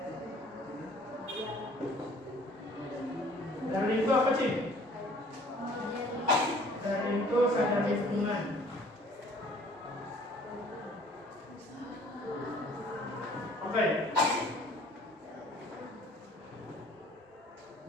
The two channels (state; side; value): normal; both; correlation 0.54